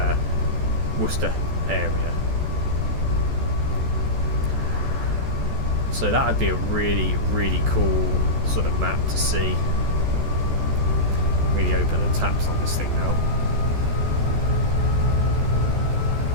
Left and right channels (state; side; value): late; left; 14 ms